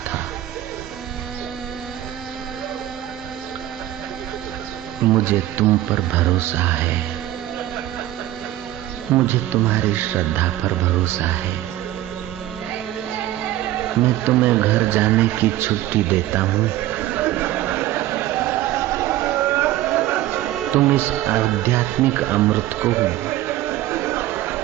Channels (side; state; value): left; quieter; 14.4 dB